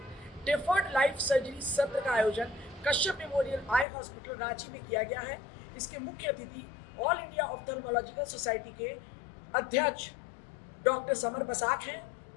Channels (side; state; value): right; drops out; at 3.9 s